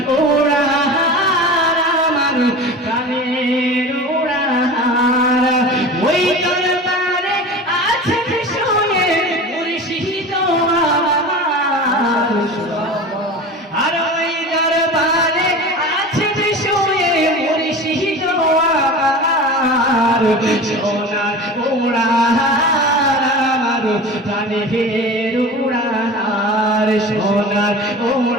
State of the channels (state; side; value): normal; both; correlation 0.34